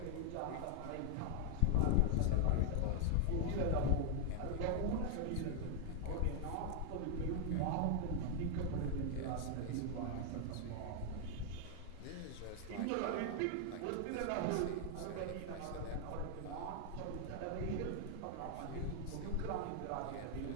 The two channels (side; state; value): both; different; correlation 0.00